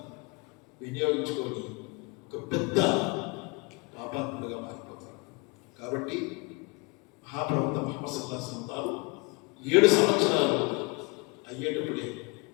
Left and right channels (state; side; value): quieter; right; 29.0 dB